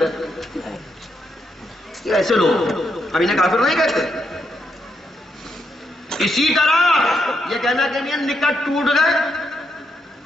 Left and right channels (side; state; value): both; normal; correlation 0.79